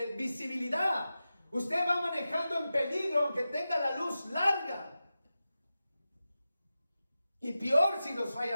visibilidad. Usted va manejando en peligro aunque tenga la luz larga. Y peor si nos falla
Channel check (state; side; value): inverted; both; correlation -0.93